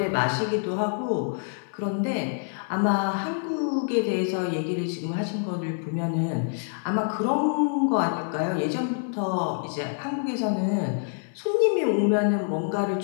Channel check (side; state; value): right; silent; 55 dB below the other